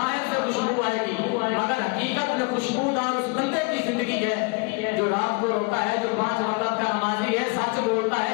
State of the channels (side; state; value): right; quieter; 29.3 dB